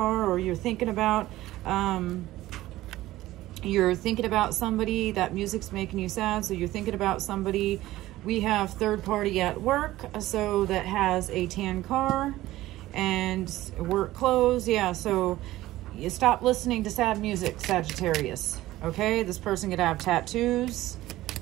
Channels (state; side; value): quieter; left; 16.2 dB